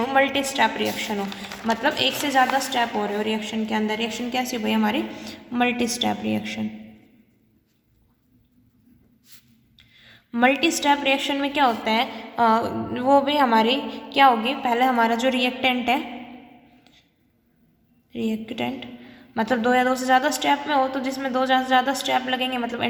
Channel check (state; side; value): identical; both; correlation 1.00